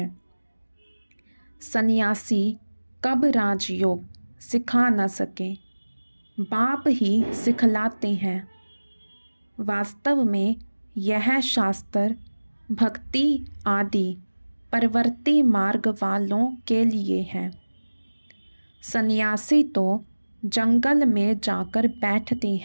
सन्यासी कब राजयोग सिखा न सके, बाप ही सिखलाते हैं। वास्तव में यह शास्त्र भक्ति आदि परवर्ती मार्ग वालों के लिए है। सन्यासी तो जंगल में जाकर बैठते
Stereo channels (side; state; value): both; inverted; correlation -1.00